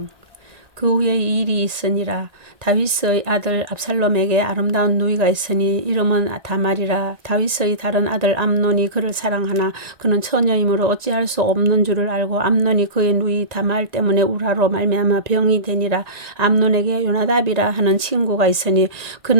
그 후에 이 일이 있으니라. 다윗의 아들 압살롬에게 아름다운 누이가 있으니 이름은 다말이라. 다윗의 다른 아들 암논이 그를 사랑하나 그는 처녀이므로 어찌할 수 없는 줄을 알고 암논이 그의 누이 다말 때문에 우라로 말미암아 병이 되니라. 암논에게 요나답이라 하는 친구가 있으니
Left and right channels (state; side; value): late; left; 1.9 ms